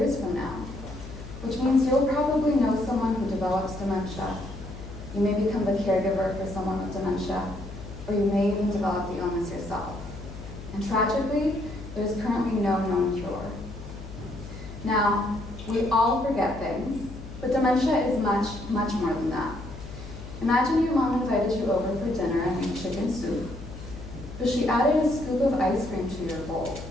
from now, which means you'll probably know someone who develops dementia. You may become the caregiver for someone with dementia, or you may even develop the illness yourself. And tragically, there's currently no known cure. Now, we all forget things, but dementia is much, much more than that. Imagine your mom invited you over for dinner and made chicken soup, but she added a scoop of ice cream to your bowl.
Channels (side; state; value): left; noise; hum, 13 dB below the sound